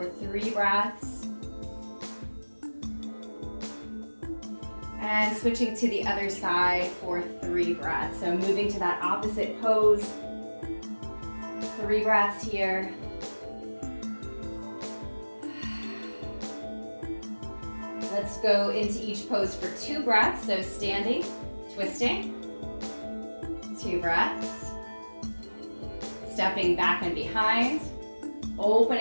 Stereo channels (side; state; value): both; inverted; correlation -1.00